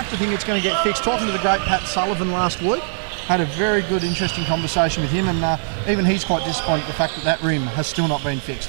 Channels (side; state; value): left; silent; digital silence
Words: to think it's going to get fixed. Talking to the great Pat Sullivan last week, had a very good, interesting conversation with him, and even he's quite disappointed at the fact that rim has still not been